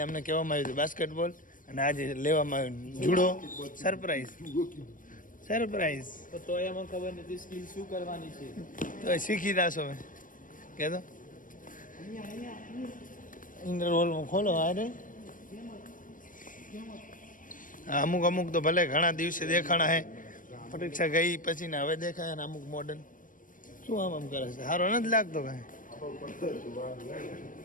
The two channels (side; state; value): right; late; 0.39 ms